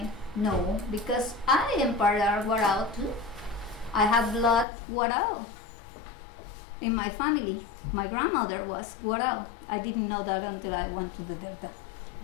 know because I am part of Warao too. I have blood Warao in my family. My grandmother was Warao. I didn't know that until I went to the Delta.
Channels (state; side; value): drops out; right; at 4.7 s